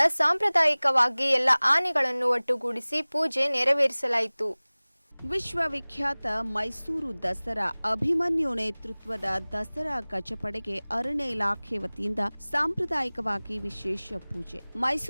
ಸಾಂಪ್ರದಾಯಿಕವಾಗಿ ಎಲ್ಲ ಆನೆಗಳನ್ನು ಒಟ್ಟುಗೂಡಿಸಿ ಪೂಜೆ ನೆರವೇರಿಸಲಾಯಿತು. ವಿಶ್ವವಿಖ್ಯಾತ ಮೈಸೂರು ದಸರಾ ಅಭಿಮನ್ಯು ನೇತೃತ್ವದ ದಸರಾ ಗಜಪಡೆಗೆ ಅರಣ್ಯ ಇಲಾಖೆ ವತಿಯಿಂದ ಸಾಂಪ್ರದಾಯಿಕವಾಗಿ ವಿಶೇಷ ಪೂಜೆ.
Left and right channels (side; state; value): both; inverted; correlation -1.00